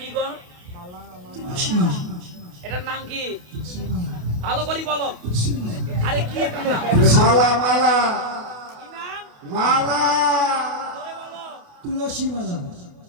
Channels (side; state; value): left; late; 28 ms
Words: গো এটার নাম কি ভালো করে বলো আরে কি এটার নাম মালা মালা কি নাম মালা ধরে বলো তুলসী মালা